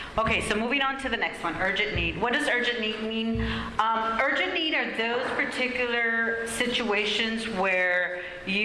Okay, so moving on to the next one, urgent need. What does urgent need mean? Urgent need are those particular situations where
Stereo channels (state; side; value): identical; both; correlation 1.00